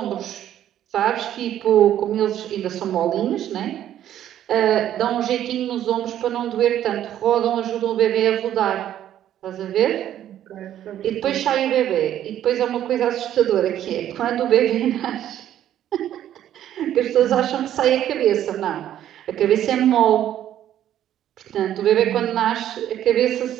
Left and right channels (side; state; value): left; quieter; 11.4 dB